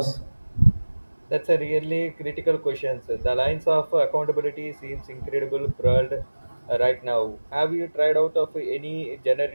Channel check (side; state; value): both; inverted; correlation -1.00